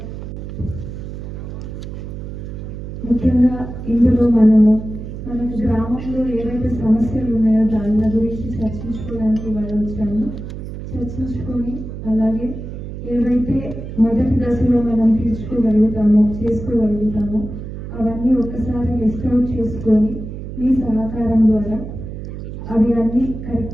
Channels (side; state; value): right; noise; hum, 9 dB below the sound